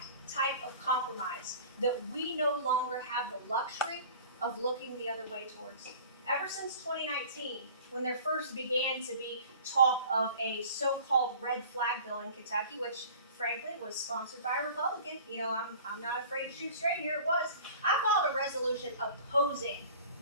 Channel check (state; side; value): inverted; both; correlation -0.44